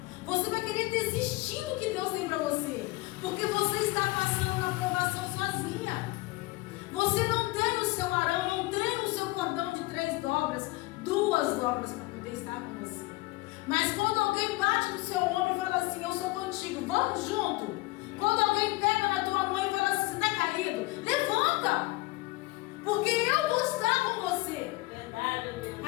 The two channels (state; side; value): quieter; right; 21.7 dB